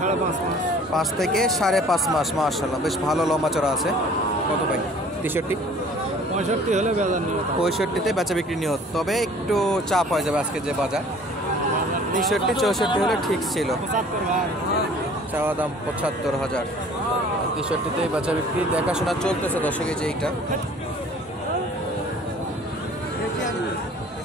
5.5 মাস। 5 থেকে 5.5 মাস। মাশাআল্লাহ, বেশ ভালো লম্বা চড়া আছে। কত ভাই? 63? 65 হলে বেজার নিয়ে 65তে বেচা বিক্রি নিয়ত, তবে একটু চাপ হয়ে যাবে আজকে যে বাজার। 63 64 হলে ঠিক ছিল। 75 ভাই। চাওয়া দাম 75,000। 63তে বেচা বিক্রি দেখাশোনা চলতেছে দর্শক। এই যে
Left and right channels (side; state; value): both; normal; correlation 0.51